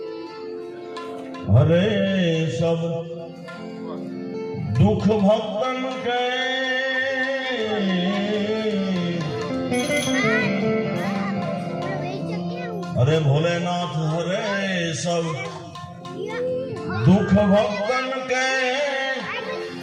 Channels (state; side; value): identical; both; correlation 1.00